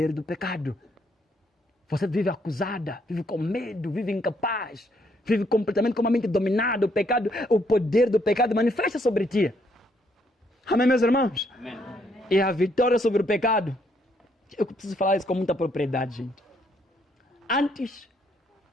do pecado. Você vive acusada, vive com medo, vive incapaz, vive completamente com uma mente dominada. O pecado, o poder do pecado manifesta sobre ti. Amém, meus irmãos? Amém. E a vitória sobre o pecado, eu preciso falar isso com muita propriedade, gente. Antes,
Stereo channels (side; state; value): both; normal; correlation 0.71